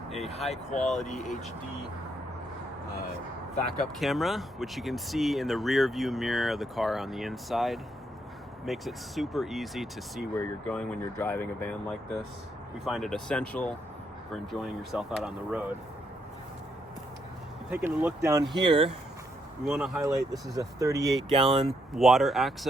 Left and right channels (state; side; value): normal; both; correlation 0.76